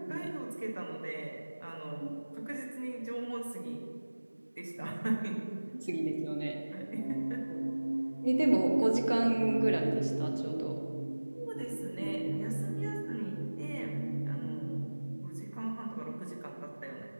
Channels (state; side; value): inverted; both; correlation -1.00